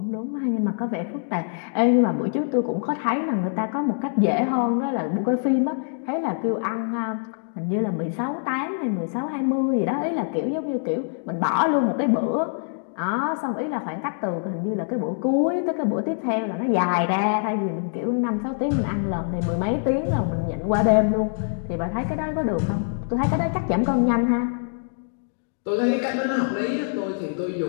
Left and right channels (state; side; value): silent; right; digital silence